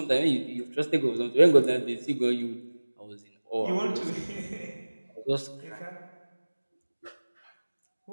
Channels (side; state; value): both; inverted; correlation -1.00